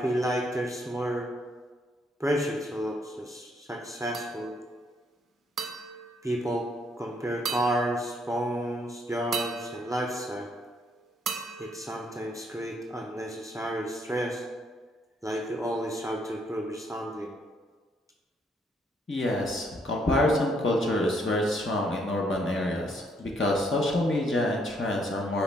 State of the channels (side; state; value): both; normal; correlation 0.70